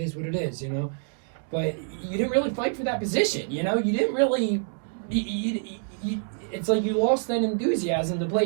what it is. You know, but you didn't really fight for that position. You know, you didn't really. It's like you lost that enthusiasm to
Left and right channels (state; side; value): silent; left; 60 dB below the other